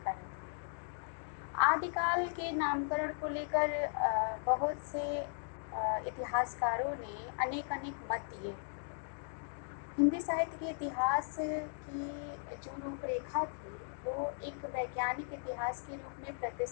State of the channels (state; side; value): silent; right; digital silence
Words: आदिकाल के नामकरण को लेकर बहुत से इतिहासकारों ने अनेक मत दिए। हिंदी साहित्य के इतिहास की जो रूपरेखा थी वो एक वैज्ञानिक इतिहास के रूप में